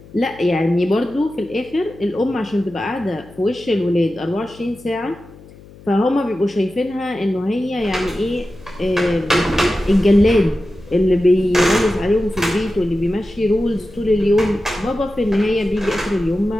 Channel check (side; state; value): left; noise; hum, 21 dB below the sound